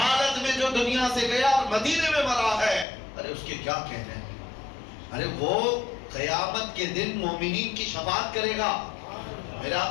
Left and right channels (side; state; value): right; drops out; at 2.9 s